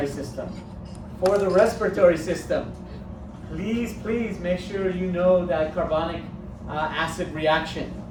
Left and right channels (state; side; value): identical; both; correlation 1.00